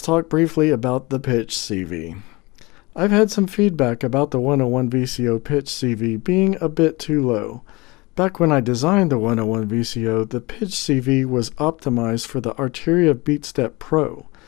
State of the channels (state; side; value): quieter; right; 24.0 dB